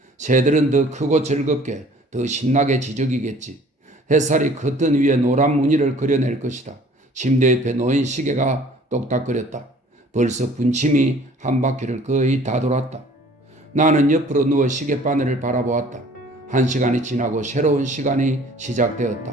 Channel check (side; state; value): both; normal; correlation 0.52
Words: 새들은 더 크고 즐겁게, 더 신나게 지저귀겠지. 햇살이 커튼 위에 노란 무늬를 그려낼 것이다. 침대 옆에 놓인 시계가 똑딱거렸다. 벌써 분침이 한 바퀴를 거의 다 돌았다. 나는 옆으로 누워 시계바늘을 바라보았다. 1시간이 지나고 새로운 시간이